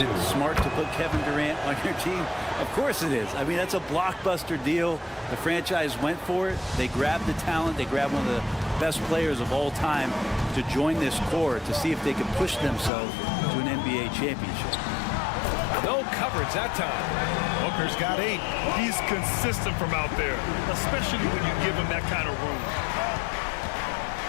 smart to put Kevin Durant on your team? Of course it is. I mean, that's a blockbuster deal. The franchise went for it. They grabbed the talent. They grabbed one of the best players of all time to join this core to see if they could push themselves to an NBA championship. No coverage that time. Booker's got 8. He's consistent from out there, especially when you give him that kind of room.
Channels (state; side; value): drops out; right; at 12.9 s